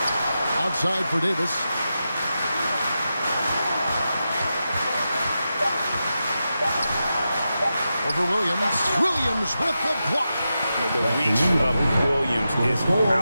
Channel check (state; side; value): inverted; both; correlation -0.90